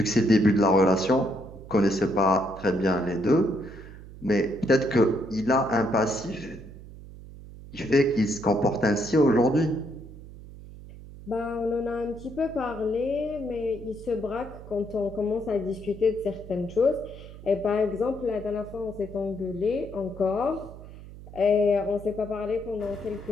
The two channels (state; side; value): noise; right; hum, 16 dB below the sound